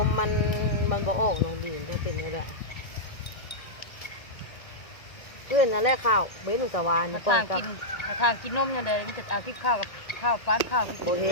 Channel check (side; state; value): right; late; 1.7 ms